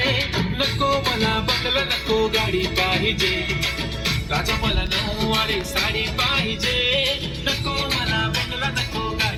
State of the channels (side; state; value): both; identical; correlation 1.00